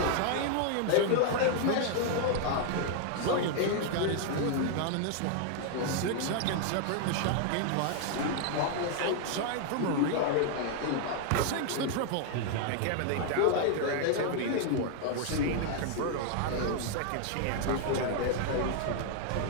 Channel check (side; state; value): both; different; correlation 0.00